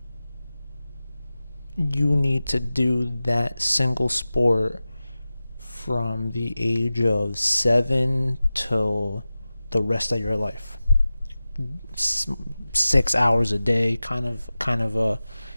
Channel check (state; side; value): inverted; both; correlation -0.96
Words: you need to do that single sport from the age of 7 till the rest of your life. 6 hours a day, kind of